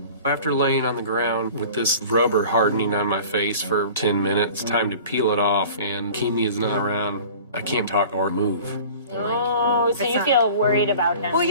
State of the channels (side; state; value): both; inverted; correlation -0.43